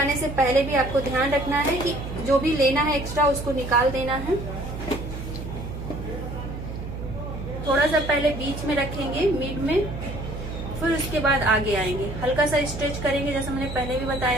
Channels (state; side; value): noise; right; hum, 8 dB below the sound